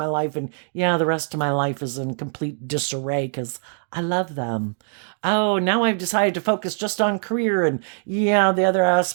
life. And yeah, the rest of my life is in complete disarray because I love them. Oh, now I've decided to focus just on career. And yeah, the other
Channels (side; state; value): left; silent; digital silence